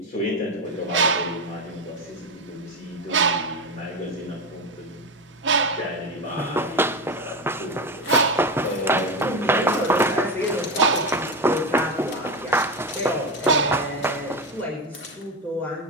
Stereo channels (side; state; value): both; normal; correlation 0.17